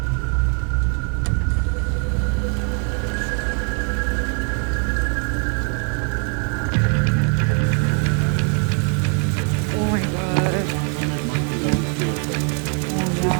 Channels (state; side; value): quieter; left; 39.1 dB